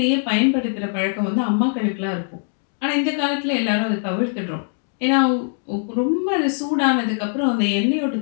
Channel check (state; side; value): silent; right; 62 dB below the other